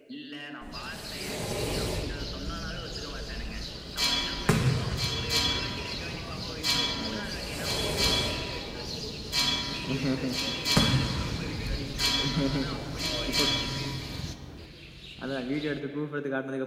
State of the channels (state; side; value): identical; both; correlation 1.00